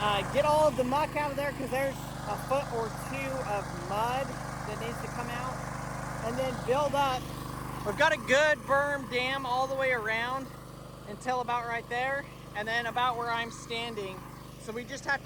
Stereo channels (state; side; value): identical; both; correlation 1.00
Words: Get all of the muck out of there, because there's a foot or two of mud that needs to come out, and then build up. We've got a good berm dam all the way around until about right there, and then about where I'm standing. So we just have